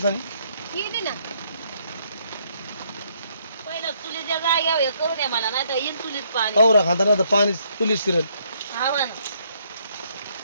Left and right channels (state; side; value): inverted; both; correlation -0.70